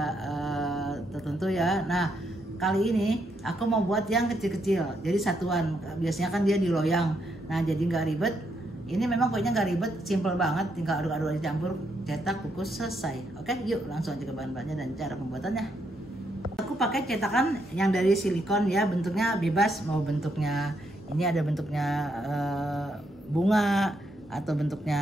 tertentu ya. Nah kali ini aku mau buat yang kecil-kecil, jadi satuan. Biasanya kan dia di loyang, nah jadi nggak ribet. Ini memang kuenya nggak ribet, simple banget, tinggal aduk-aduk dicampur, cetak, kukus, selesai. Oke, yuk langsung aja ke bahan-bahannya dan cara pembuatannya. Aku pakai cetakan yang dari silikon ya, bentuknya bebas, mau bentuknya ini ada bentuknya bunga atau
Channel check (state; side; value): normal; both; correlation 0.77